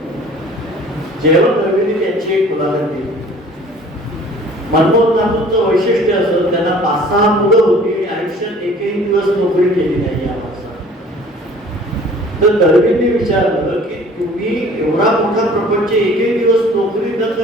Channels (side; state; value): both; normal; correlation 0.50